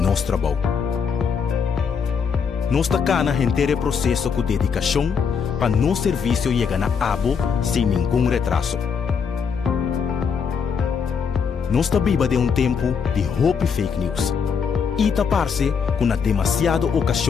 trabalho. Nós estamos na inteiro processo com dedicação para nosso serviço chegar a abo sem nenhum retraso. Nós estamos vivendo tempo de hope fake news. E taparse com a demasiada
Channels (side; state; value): right; quieter; 6.3 dB